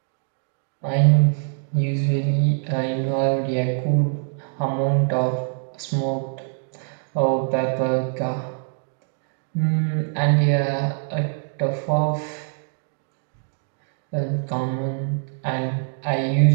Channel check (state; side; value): silent; left; digital silence